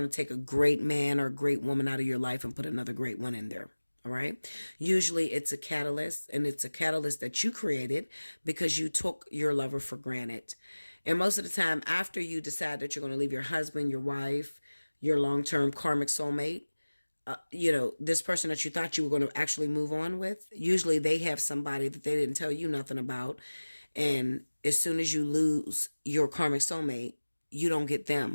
to take a great man or a great woman out of your life and put another great one in there. All right. Usually it's a catalyst, and it's a catalyst that you created because you took your lover for granted. And most of the time after you decide that you're going to leave your husband, your wife, your long-term karmic soulmate, this person that you thought you were going to actually move on with, usually they have somebody that they didn't tell you nothing about. And as soon as you lose your karmic soulmate, you don't get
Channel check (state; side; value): inverted; both; correlation -1.00